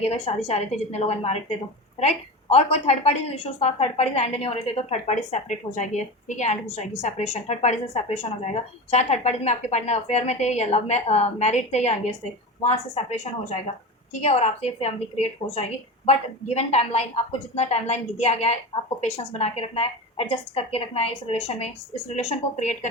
अगर शादी चाह रहे थे जितने लोग अनमैरिड थे तो, राइट। और कोई थर्ड पार्टी इशूज था, थर्ड पार्टी से एंड नहीं हो रहे थे, तो थर्ड पार्टी सेपरेट हो जाएगी, ठीक है, एंड हो जाएगी, सेपरेशन, थर्ड पार्टी से सेपरेशन हो जाएगा। चाहे थर्ड पार्टी में आपके पार्टनर अफेयर में थे, या लव में मैरिड थे, या एंगेज थे, वहाँ से सेपरेशन हो जाएगा, ठीक है। और आपसे फैमिली क्रिएट हो जाएगी, बट गिवन टाइमलाइन, आपको जितना टाइमलाइन दिया गया है, आपको पेशेंस बना के रखना है, एडजस्ट करके रखना है इस रिलेशन में, इस रिलेशन को क्रिएट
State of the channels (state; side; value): normal; both; correlation 0.26